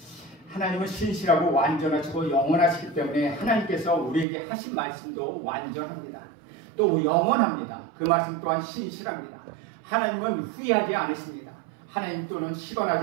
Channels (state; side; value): drops out; left; at 4.2 s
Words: 하나님은 신실하고 완전하시고 영원하시기 때문에 하나님께서 우리에게 하신 말씀도 완전합니다. 또 영원합니다. 그 말씀 또한 신실합니다. 하나님은 후회하지 않으십니다. 하나님 또는